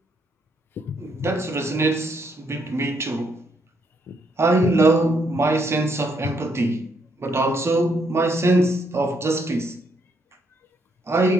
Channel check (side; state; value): both; normal; correlation 0.74